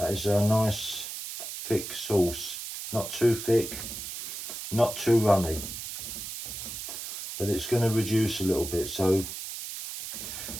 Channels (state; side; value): noise; right; hiss, 7 dB below the sound